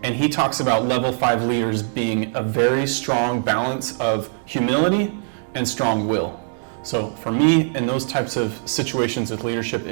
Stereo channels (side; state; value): left; silent; digital silence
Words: And he talks about level 5 leaders being a very strong balance of humility and strong will. So for me, in those types of situations with leadership,